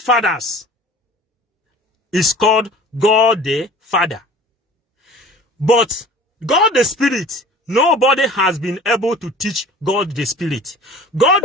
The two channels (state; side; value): normal; both; correlation 0.44